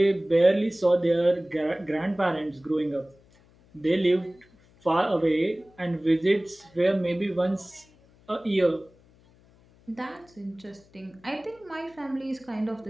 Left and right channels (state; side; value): noise; left; hum, 29 dB below the sound